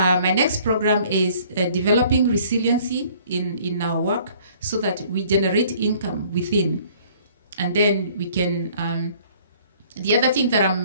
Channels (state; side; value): inverted; both; correlation -0.56